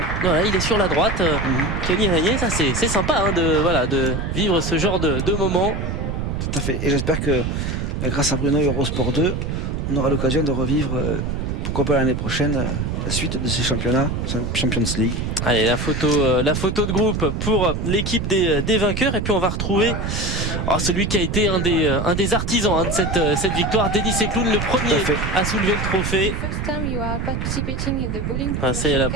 Voilà, il est sur la droite. Tony Régnier, ça c'est sympa de vivre ce genre de moment. Tout à fait. Et j'espère que grâce à Bruno et Eurosport 2, on aura l'occasion de revivre, pourquoi pas l'année prochaine, la suite de ces championnats, Champions League. Allez, la photo de groupe pour l'équipe des vainqueurs, et puis on va retrouver celui qui a été un des artisans de cette victoire, Denis Sencloud, le premier à soulever le trophée. C'est la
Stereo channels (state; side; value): noise; right; rumble, 2 dB below the sound